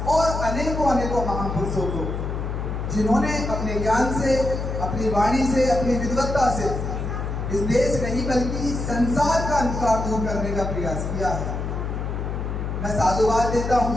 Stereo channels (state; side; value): noise; left; hum, 3 dB below the sound